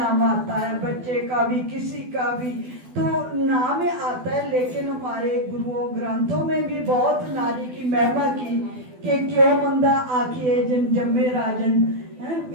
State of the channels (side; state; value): left; late; 12 ms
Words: आता है, बच्चे का भी, किसी का भी तो नाम आता है। लेकिन हमारे गुरुओं ग्रंथों में भी बहुत नारी की महिमा की कि क्यों मंदा आखिए जिन जम्मे राजन,